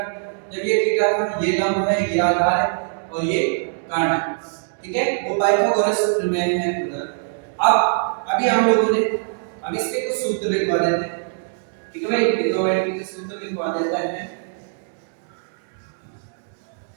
जब ये थीटा था, ये लंब है, ये आधार है और ये कर्ण है, ठीक है, वो पाइथागोरस सूत्र में है उधर। अब अभी हम लोगों ने, अब इसके कुछ सूत्र लिखवा देते हैं, ठीक है भाई, ट्रिग्नोमेट्री के सूत्र लिखवा देते हैं।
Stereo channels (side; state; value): left; silent; digital silence